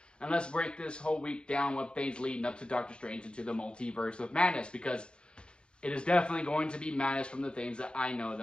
and let's break this whole week down with things leading up to Doctor Strange into the multiverse of madness, because it is definitely going to be madness from the things that I know that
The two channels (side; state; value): right; late; 0.054 ms